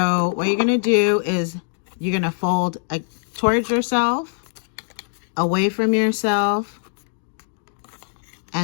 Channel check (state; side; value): silent; right; digital silence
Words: what you're going to do is you're going to fold towards yourself, away from yourself,